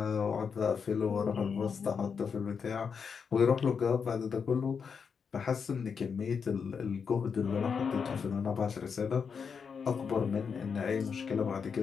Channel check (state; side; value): quieter; right; 6.2 dB